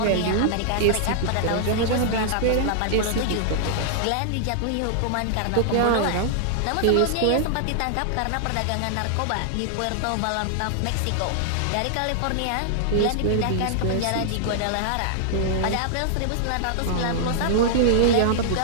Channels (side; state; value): both; different; correlation -0.01